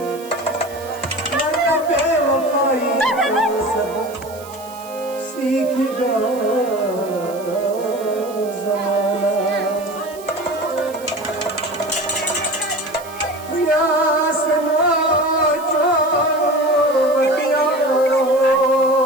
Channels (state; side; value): noise; right; hiss, 19 dB below the sound